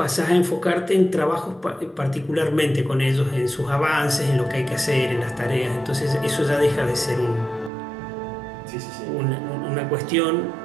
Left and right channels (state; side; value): drops out; left; at 7.7 s